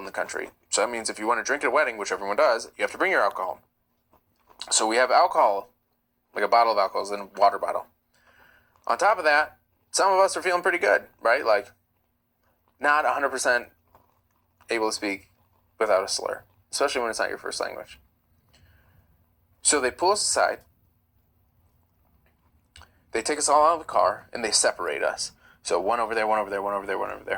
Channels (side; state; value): both; identical; correlation 1.00